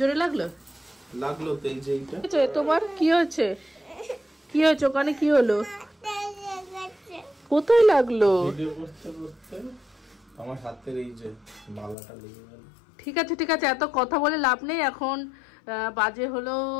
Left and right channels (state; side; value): drops out; right; at 12.0 s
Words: লাগলো তো এই যে এইটা। তোমার কি হয়েছে ওখানে? কি হলো? কোথায় লাগলো? ভিডিও করতে আমার হাতের এই যে মালাটা লেগে গেল। ঠিক আছে, এত কথা বলে লাভ নেই। এখন বাজে হলো